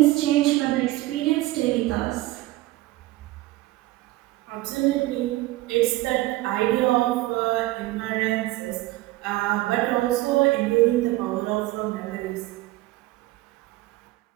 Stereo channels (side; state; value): left; quieter; 18.1 dB